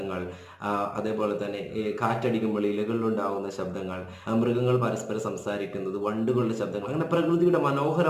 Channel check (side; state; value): both; identical; correlation 1.00